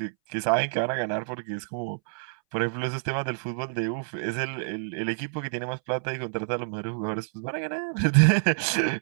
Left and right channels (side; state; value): left; silent; 60 dB below the other